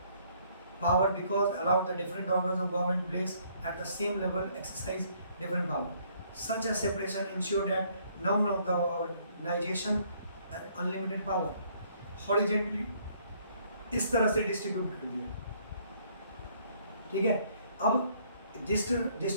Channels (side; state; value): both; inverted; correlation -0.65